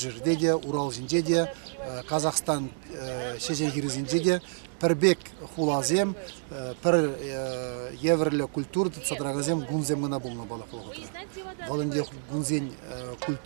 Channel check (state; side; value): silent; left; digital silence